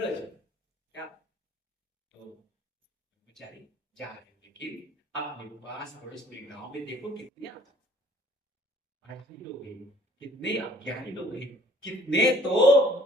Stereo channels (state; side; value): normal; both; correlation 0.57